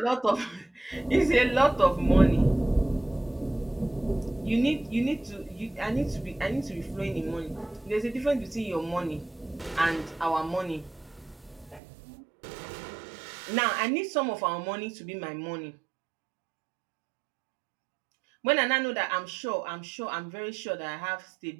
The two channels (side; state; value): left; drops out; at 11.8 s